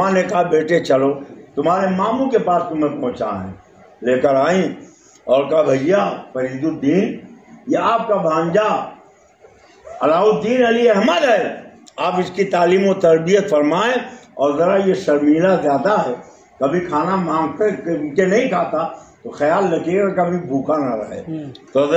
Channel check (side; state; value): both; identical; correlation 1.00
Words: نے کہا بیٹے چلو تمہارے ماموں کے پاس تمہیں پہنچا ہے، لے کر آئیں اور کہا بھیا فرید الدین یہ آپ کا بھانجا علاء الدین علی احمد ہے، آپ اس کی تعلیم و تربیت فرمائیں، اور ذرا یہ شرمیلا زیادہ ہے، کبھی کھانا مانگتے کہ نہیں کھاتا تو خیال رکھیے گا کبھی بھوکا نہ رہے۔ تو